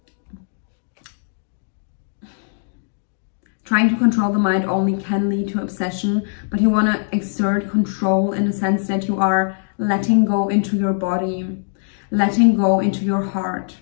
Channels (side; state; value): right; silent; digital silence